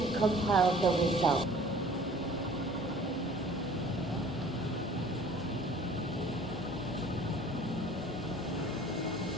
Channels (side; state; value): both; normal; correlation 0.49